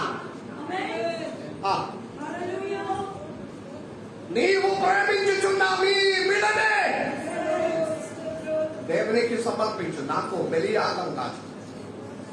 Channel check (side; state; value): both; identical; correlation 1.00